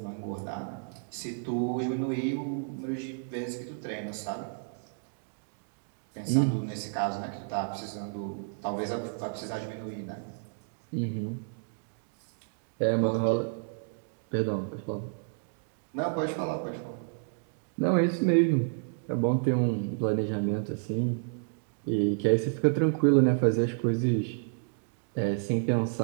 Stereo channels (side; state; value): left; silent; digital silence